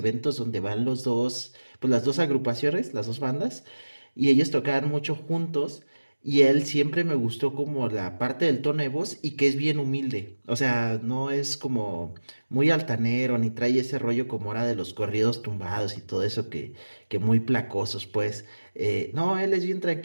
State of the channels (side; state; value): both; inverted; correlation -1.00